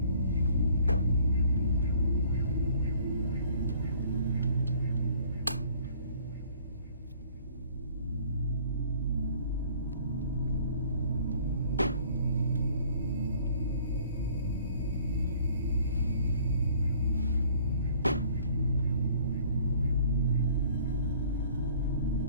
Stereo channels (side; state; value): both; inverted; correlation -0.56